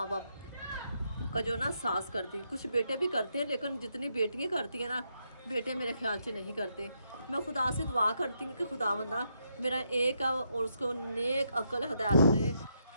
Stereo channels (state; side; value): inverted; both; correlation -0.79